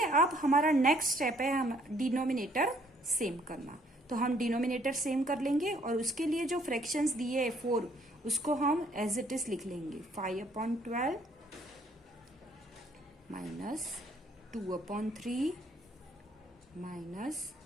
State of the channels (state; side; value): normal; both; correlation 0.64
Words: अब हमारा नेक्स्ट स्टेप है हम डिनोमिनेटर सेम करना। तो हम डिनोमिनेटर सेम कर लेंगे और उसके लिए जो फ्रैक्शंस दिए 4 उसको हम एज इट इज लिख लेंगे। 5/12 माइनस 2/3 माइनस